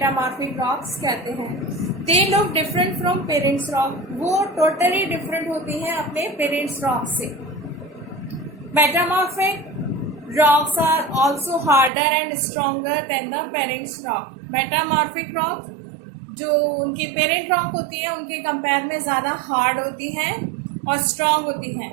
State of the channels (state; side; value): drops out; left; at 11.9 s